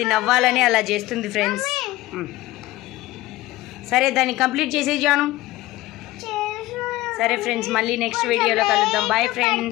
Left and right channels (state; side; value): quieter; right; 17.6 dB